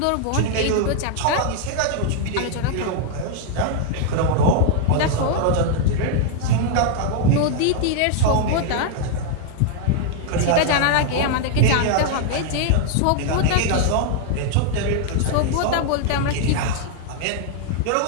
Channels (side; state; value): both; different; correlation 0.00